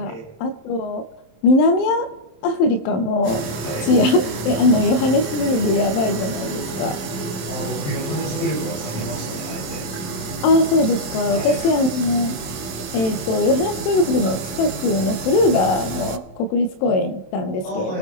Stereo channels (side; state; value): right; late; 27 ms